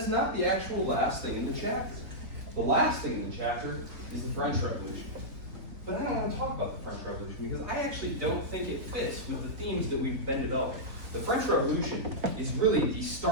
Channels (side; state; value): left; late; 3.5 ms